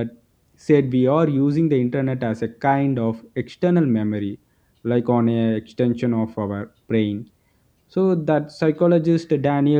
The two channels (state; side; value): identical; both; correlation 1.00